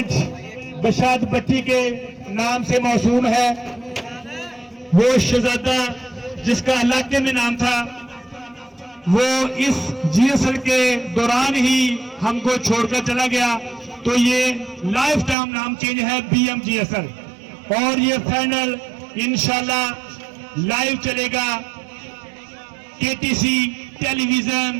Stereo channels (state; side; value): drops out; left; at 15.4 s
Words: बशारत भट्टी के नाम से मौसूम है। वो शहजादा जिसका इलाके में नाम था, वो इस जीएसएल के दौरान ही हमको छोड़कर चला गया, तो ये लाइफ टाइम नाम चेंज है BMGSL। और ये फाइनल इंशाल्लाह लाइव चलेगा KTC टेलीविजन,